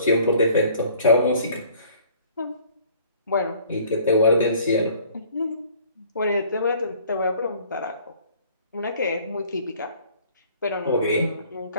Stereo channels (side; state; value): both; inverted; correlation -0.54